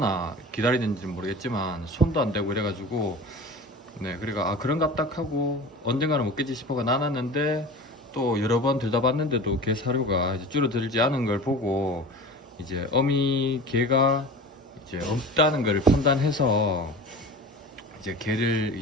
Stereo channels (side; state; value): both; normal; correlation 0.35